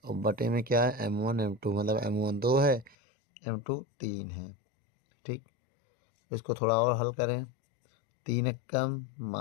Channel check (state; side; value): drops out; right; at 3.0 s